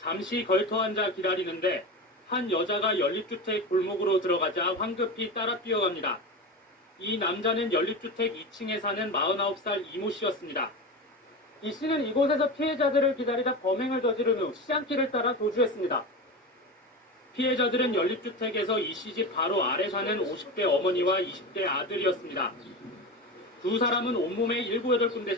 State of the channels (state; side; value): normal; both; correlation 0.24